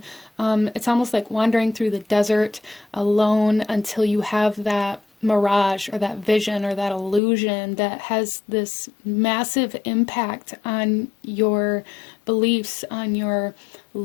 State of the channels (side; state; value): right; drops out; at 7.2 s